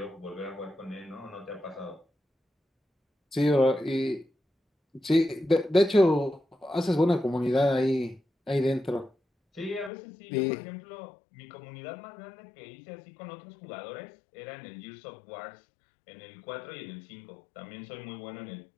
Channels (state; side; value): drops out; right; at 9.9 s